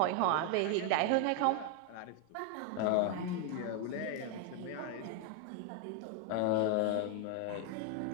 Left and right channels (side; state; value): both; different; correlation 0.01